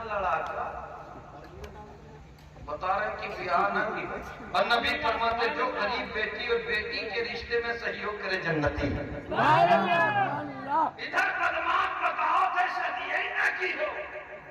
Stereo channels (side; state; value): both; identical; correlation 1.00